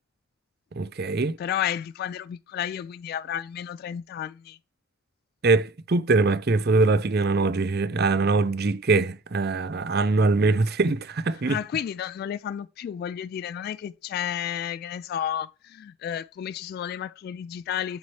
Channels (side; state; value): both; normal; correlation 0.42